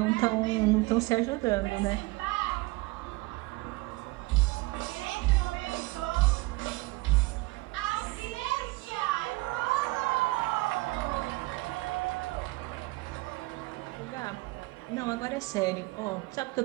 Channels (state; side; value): quieter; left; 22.8 dB